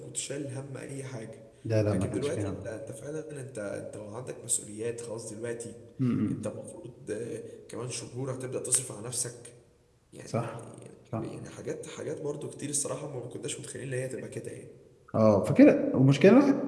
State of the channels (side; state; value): both; identical; correlation 1.00